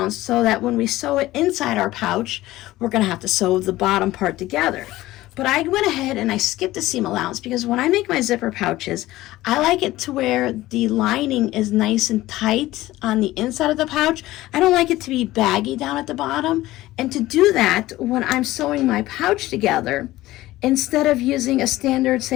so that when we sew it inside our pouch, we're going to have to sew the bottom part together. But I went ahead and I skipped the seam allowance because when I make my zipper pouches, I like it to where the lining is nice and tight on the inside of the pouch. I don't like it to be baggy down at the bottom. And to do that, when I'm sewing my pouch together, instead of using a standard,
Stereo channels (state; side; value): quieter; right; 16.8 dB